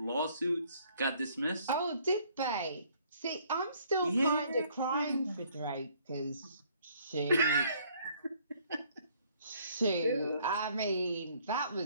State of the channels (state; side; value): inverted; both; correlation -0.62